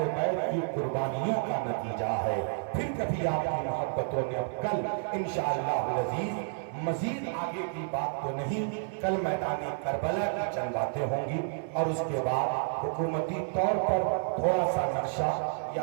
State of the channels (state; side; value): silent; left; 56 dB below the other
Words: بیت کی قربانیوں کا نتیجہ ہے۔ پھر کبھی آپ کی محبتوں نے اب کل انشاءاللہ العزیز مزید آگے کی بات تو نہیں، کل میدان کربلا کی چند باتیں ہوں گی اور اس کے بعد حکومتی طور پر تھوڑا سا نقشہ،